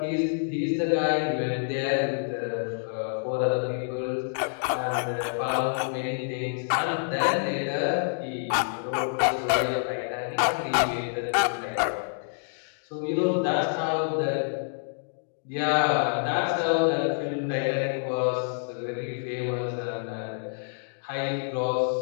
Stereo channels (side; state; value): right; silent; digital silence